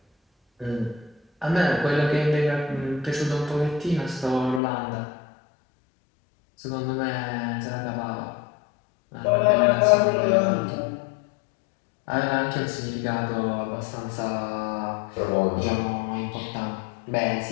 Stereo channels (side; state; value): right; drops out; at 4.6 s